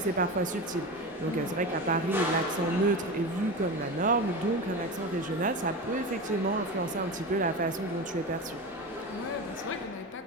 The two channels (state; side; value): normal; both; correlation 0.25